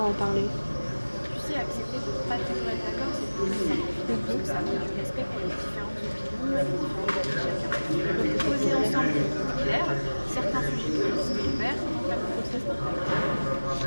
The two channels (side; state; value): both; inverted; correlation -1.00